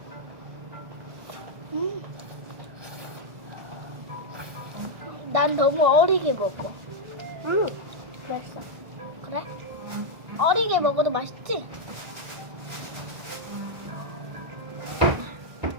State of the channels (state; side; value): late; left; 1.6 ms